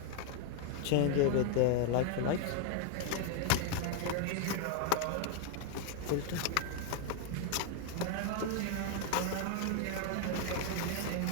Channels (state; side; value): different; both; correlation 0.00